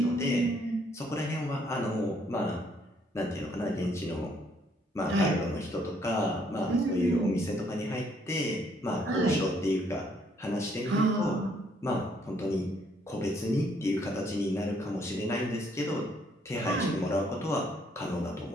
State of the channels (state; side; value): normal; both; correlation 0.67